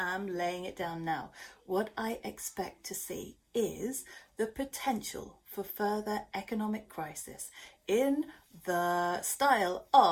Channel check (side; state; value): both; identical; correlation 1.00